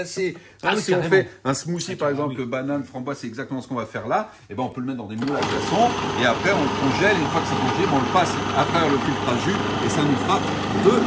Si on fait un smoothie par exemple, banane, framboise, c'est exactement ce qu'on va faire là. Et ben on peut le mettre dans des moules à glaçons et après on le congèle. Et une fois que c'est congélé, on le passe à travers le filtre à jus et ça nous fera de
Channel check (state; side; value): identical; both; correlation 1.00